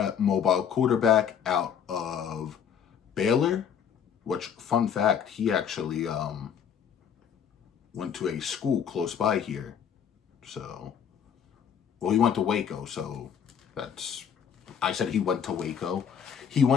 mobile quarterback out of Baylor, which, fun fact, he actually went to a school close by here. So, well, he went to Waco, so I said he went to Waco. He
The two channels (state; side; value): quieter; right; 7.9 dB